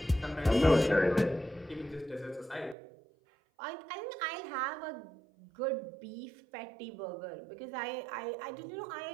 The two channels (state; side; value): drops out; left; at 2.8 s